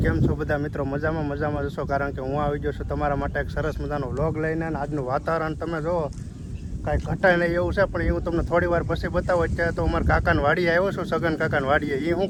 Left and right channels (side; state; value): both; identical; correlation 1.00